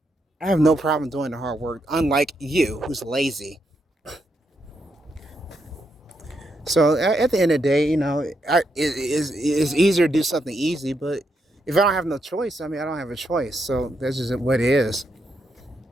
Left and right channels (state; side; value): normal; both; correlation 0.80